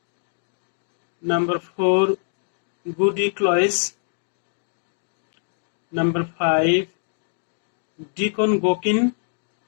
Number 4, Goody Cloyce. Number 5, Deacon Gokin.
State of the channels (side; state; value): right; silent; digital silence